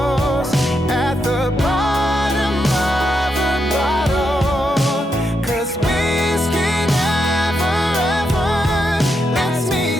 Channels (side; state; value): both; normal; correlation 0.82